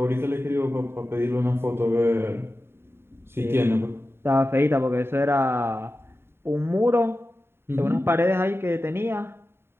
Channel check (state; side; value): late; left; 0.11 ms